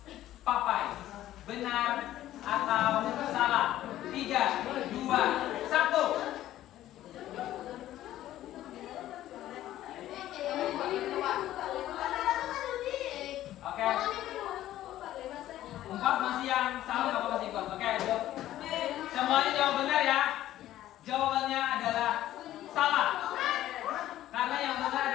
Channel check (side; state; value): right; quieter; 13.6 dB